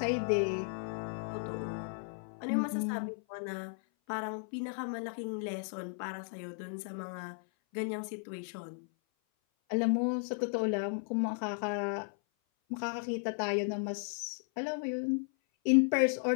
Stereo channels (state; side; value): silent; right; 55 dB below the other